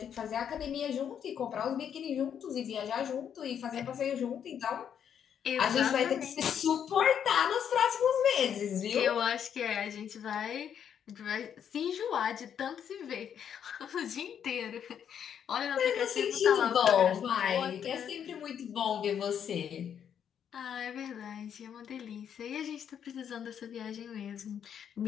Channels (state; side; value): quieter; right; 8.5 dB